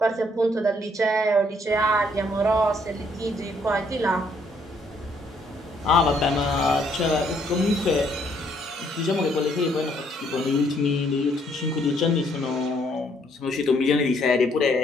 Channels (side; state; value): both; normal; correlation 0.68